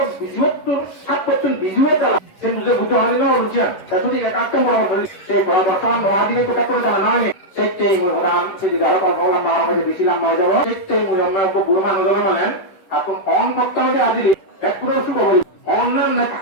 ৭% বিজুয়ে তারা সে বুঝে বুঝতে হয় না রুচিয়ান তা সঠিক একটা পরামর্শ সেই বর্তমান মহাদিনে কোথা করে তারা নয় সেটাই মূল প্রধান সেদিকে আরো কথা বললাম আমার মধ্যে বেশি লম্বা হয়ে যাবো সেটাই মূল আমরা বুড়ো মানুষ মানেন এখন অন করতে হবে আজিলি একটু শুভ বলি অন্যান্য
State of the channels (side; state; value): right; late; 10 ms